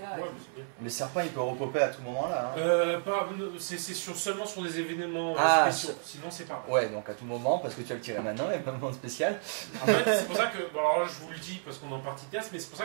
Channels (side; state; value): left; silent; digital silence